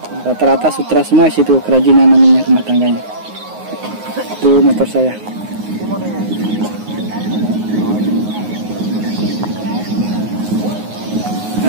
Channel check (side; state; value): left; late; 9.5 ms